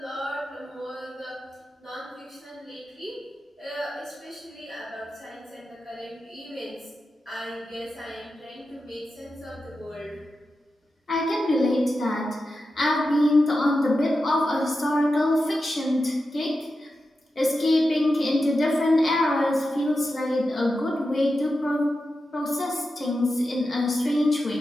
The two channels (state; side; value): normal; both; correlation 0.90